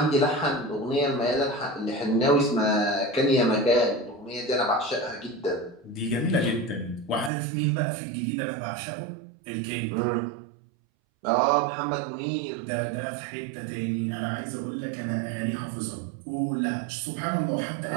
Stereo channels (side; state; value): left; drops out; at 7.3 s